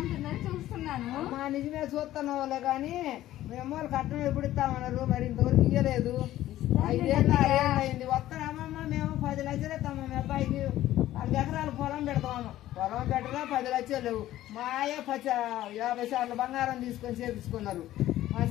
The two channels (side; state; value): right; quieter; 14.2 dB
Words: చూస్తున్నాను నిజమే చూస్తున్నావులే కానీ మేము కట్నం ఎప్పుడు ఇస్తామన్నారు మరి ఇంతవరకు ఇయ్యలేదు 5 ఏళ్ళు 6 ఏళ్ళు అయింది వస్తామమ్మా మేము 10 లక్షలు ఇస్తామా మీ అబ్బాయికి 4 ఎకరాలు పొలం పెడతాము పొలం పెట్టగా 10 లక్షలు లేవు మాయ 50 సార్లు బంగారం తీసుకొని చేపించుకున్నారు మా